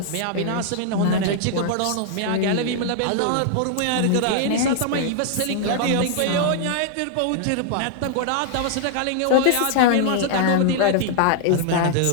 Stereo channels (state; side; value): different; both; correlation -0.01